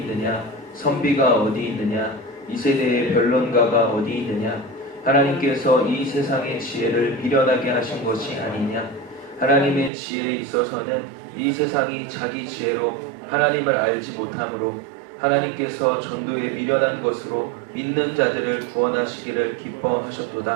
선비가 어디 있느냐, 이 세대의 변론가가 어디 있느냐. 하나님께서 이 세상의 지혜를 미련하게 하신 것이 아니냐. 하나님의 지혜에 있어서는 이 세상이 자기 지혜로 하나님을 알지 못하므로 하나님께서 전도에 미련한 것으로 믿는 자들을 구원하시기를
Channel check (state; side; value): drops out; left; at 9.9 s